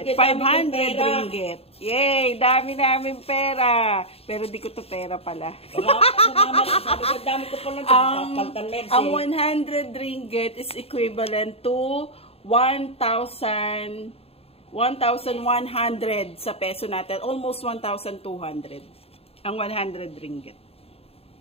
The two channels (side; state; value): right; late; 0.29 ms